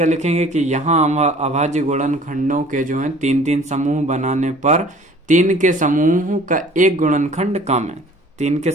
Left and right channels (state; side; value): normal; both; correlation 0.50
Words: लिखेंगे कि यहाँ अभाज्य गुणनखंडों के जो है 3-3 समूह बनाने पर 3 के समूह का एक गुणनखंड कम है। 3 के